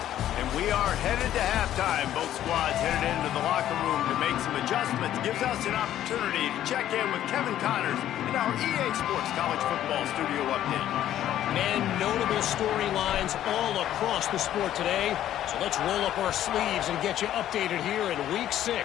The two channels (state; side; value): quieter; right; 11.9 dB